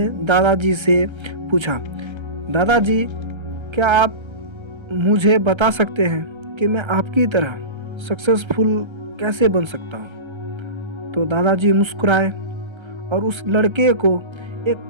दादाजी से पूछा, दादाजी, क्या आप मुझे बता सकते हैं कि मैं आपकी तरह सक्सेसफुल कैसे बन सकता हूँ? तो दादाजी मुस्कुराए और उस लड़के को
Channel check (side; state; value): left; late; 1.3 ms